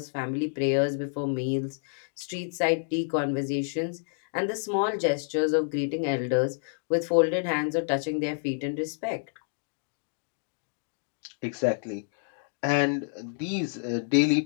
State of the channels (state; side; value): silent; right; digital silence